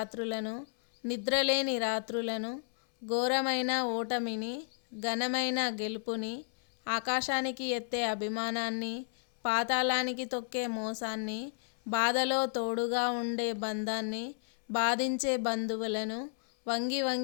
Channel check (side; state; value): right; silent; 56 dB below the other